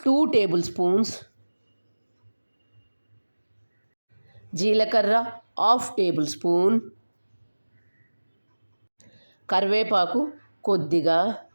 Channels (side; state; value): both; inverted; correlation -1.00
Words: 2 టేబుల్ స్పూన్స్, జీలకర్ర 1/2 టేబుల్ స్పూన్, కరివేపాకు కొద్దిగా,